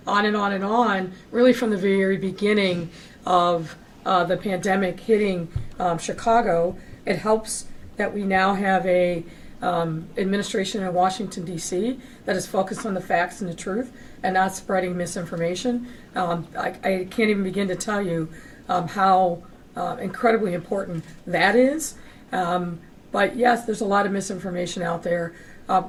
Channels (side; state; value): both; identical; correlation 1.00